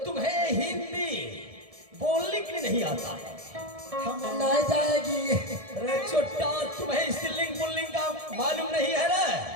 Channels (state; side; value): late; left; 1.7 ms